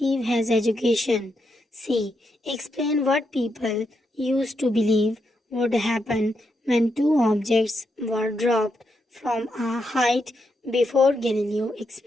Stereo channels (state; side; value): normal; both; correlation 0.82